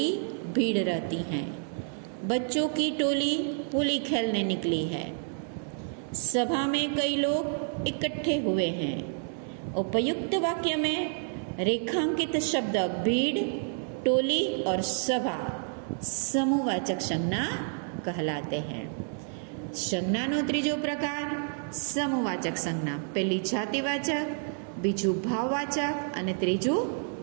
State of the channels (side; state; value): left; silent; 58 dB below the other